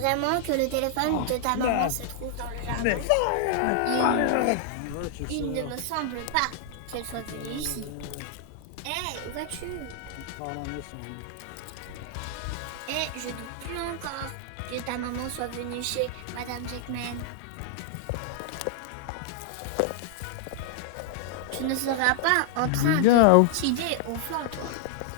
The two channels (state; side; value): different; both; correlation -0.01